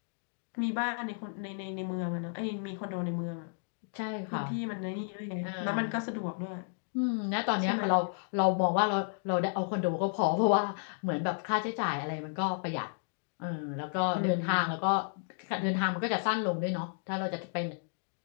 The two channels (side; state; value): right; silent; digital silence